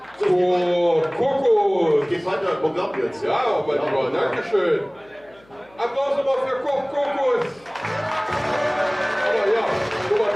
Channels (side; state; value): left; noise; hum, 29 dB below the sound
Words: So, Kokos. Geht weiter im Programm jetzt. Ja, aber lieber, Dankeschön. Applaus nochmal für Kokos. Aber ja, Nummer 3,